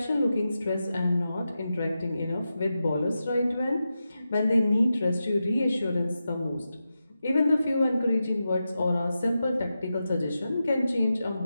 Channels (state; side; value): inverted; both; correlation -0.90